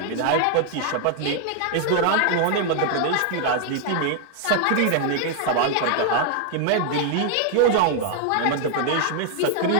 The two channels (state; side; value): different; both; correlation 0.00